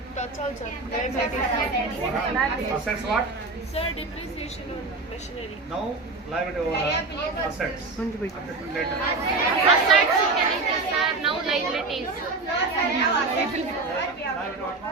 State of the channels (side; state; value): left; quieter; 3.6 dB